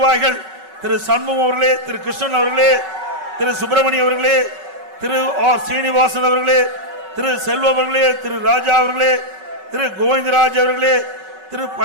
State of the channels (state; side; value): late; left; 5.3 ms